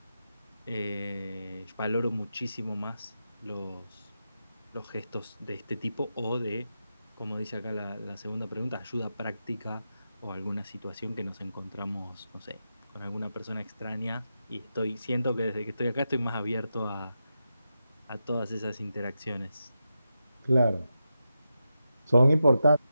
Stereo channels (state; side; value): inverted; both; correlation -0.89